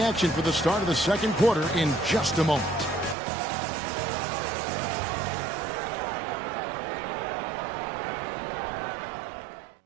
action for the start of the second quarter in just a moment.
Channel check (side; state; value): left; drops out; at 3.2 s